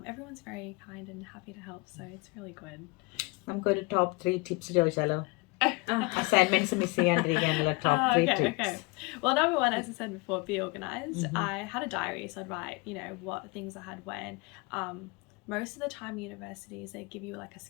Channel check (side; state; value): right; quieter; 26.8 dB